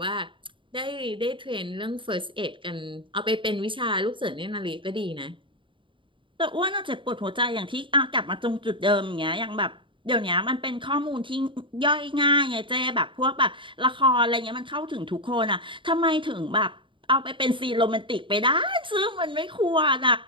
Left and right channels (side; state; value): left; late; 0.24 ms